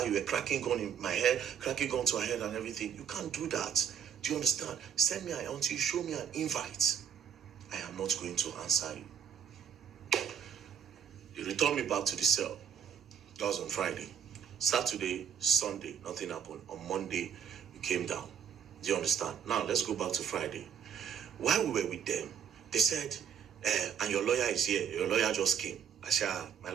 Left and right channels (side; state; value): left; quieter; 8.2 dB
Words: You were cracking gun in my head, cracking gun to her head and everything. You can't do that. Do you understand? Send me until you show me an invite. I am not going to answer you. They returned me back to the cell. That was on Friday. Saturday, Sunday, nothing happened. On Monday, we came down. Do you understand? Now, let's go back to Friday. While we were with them, they said, and your lawyer is here. Your lawyer just came. I said, my